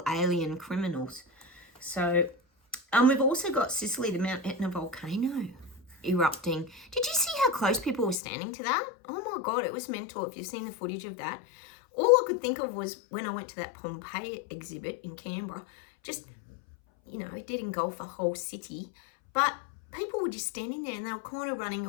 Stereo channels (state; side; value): drops out; right; at 8.2 s